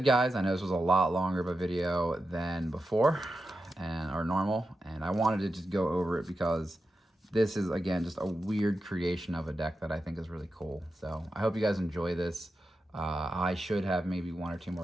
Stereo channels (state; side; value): normal; both; correlation 0.90